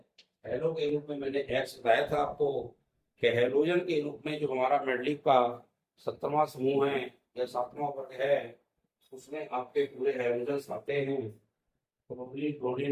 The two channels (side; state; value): both; identical; correlation 1.00